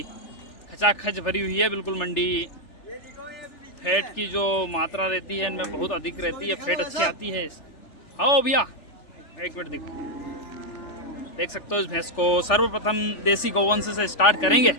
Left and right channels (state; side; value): late; right; 3.4 ms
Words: खचाखच भरी हुई है बिल्कुल मंडी। फैट की जो मात्रा रहती है इनमें बहुत अधिक रहती है, फैट अच्छी आती है। आओ भैया एक मिनट देख सकते हो इस भैंस को। सर्वप्रथम देसी गौवंश से स्टार्ट करेंगे।